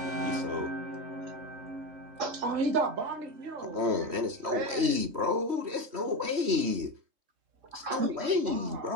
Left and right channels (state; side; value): late; left; 3.1 ms